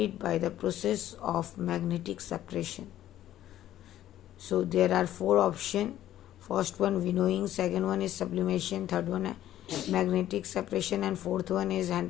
by the process of magnetic separation. So there are 4 options. First one winnowing, second one is sublimation, third one magnetic separation, and fourth one is hand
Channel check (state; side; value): quieter; right; 12.6 dB